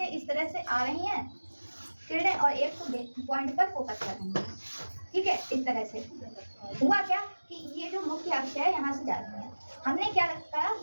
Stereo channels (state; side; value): inverted; both; correlation -1.00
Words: इस तरह से आ रही हैं किरणें और एक पॉइंट पर फोकस कर रही हैं, ठीक है। इस तरह से हुआ क्या कि ये जो मुख्य अक्ष है यहाँ से जा रही है। हमने क्या रखा,